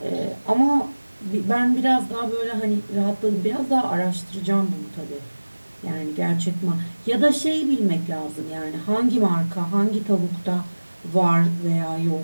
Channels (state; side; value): inverted; both; correlation -1.00